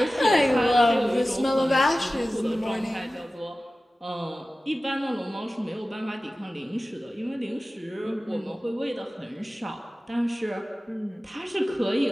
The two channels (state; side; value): normal; both; correlation 0.96